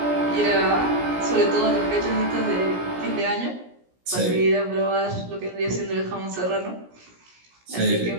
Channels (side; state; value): left; late; 17 ms